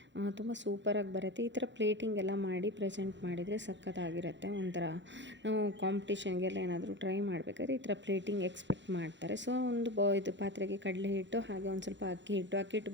ತುಂಬ ಸೂಪರಾಗಿ ಬರುತ್ತೆ. ಈ ಥರ ಪ್ಲೇಟಿಂಗ್ ಎಲ್ಲ ಮಾಡಿ ಪ್ರೆಸೆಂಟ್ ಮಾಡಿದರೆ ಸಖತ್ತಾಗಿರುತ್ತೆ. ಒಂಥರ ನಾವು ಕಾಂಪಿಟೇಷನ್ಗೆಲ್ಲ ಏನಾದರೂ ಟ್ರೈ ಮಾಡಬೇಕಾದ್ರೆ ಈ ಥರ ಪ್ಲೇಟಿಂಗ್ ಎಕ್ಸ್ಪೆಕ್ಟ್ ಮಾಡ್ತಾರೆ. ಸೊ ಒಂದು ಇದು ಪಾತ್ರೆಗೆ ಕಡಲೆ ಹಿಟ್ಟು, ಹಾಗೆ ಒಂದು ಸ್ವಲ್ಪ ಅಕ್ಕಿ ಹಿಟ್ಟು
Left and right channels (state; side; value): late; left; 0.53 ms